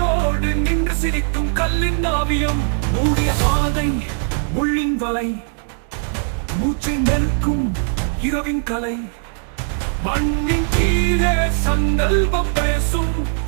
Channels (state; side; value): silent; left; digital silence